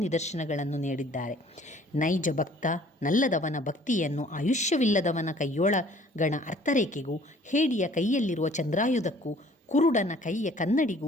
ನಿದರ್ಶನಗಳನ್ನು ನೀಡಿದ್ದಾರೆ. ನೈಜ ಭಕ್ತ ನಲ್ಲದವನ ಭಕ್ತಿಯನ್ನು ಆಯುಷ್ಯವಿಲ್ಲದವನ ಕೈಯೊಳಗಣ ಅರ್ಥರೇಖೆಗೂ ಹೇಡಿಯ ಕೈಯಲ್ಲಿರುವ ಚಂದ್ರಾಯುಧಕ್ಕೂ ಕುರುಡನ ಕೈಯ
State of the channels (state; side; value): normal; both; correlation 0.55